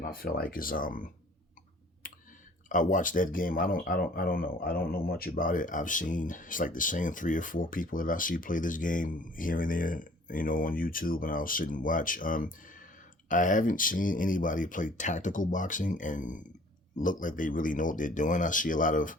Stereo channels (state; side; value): normal; both; correlation 0.53